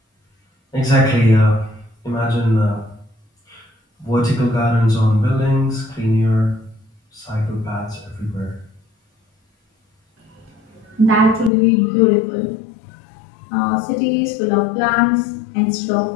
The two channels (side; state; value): right; drops out; at 11.5 s